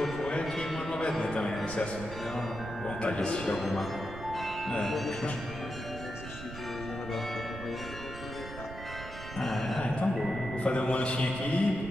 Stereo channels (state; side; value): noise; right; rumble, 11 dB below the sound